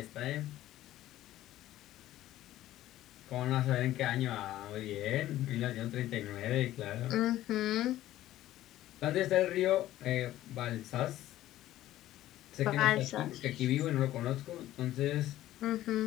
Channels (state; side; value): quieter; right; 14.2 dB